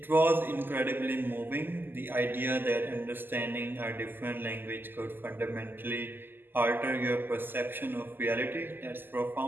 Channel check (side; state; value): left; late; 0.094 ms